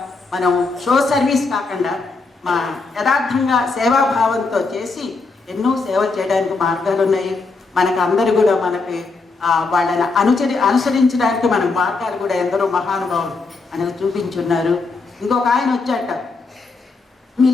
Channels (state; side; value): quieter; right; 4.0 dB